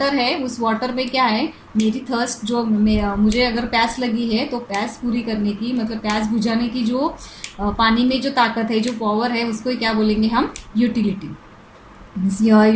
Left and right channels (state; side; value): identical; both; correlation 1.00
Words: है उस वाटर में क्या है, मेरी थर्स्ट जो मुझे अगर प्यास लगी है तो प्यास पूरी करने की, मतलब प्यास बुझाने की जो पानी में जो ताकत है, जो पावर है, उसको क्या बोलेंगे हम, utility.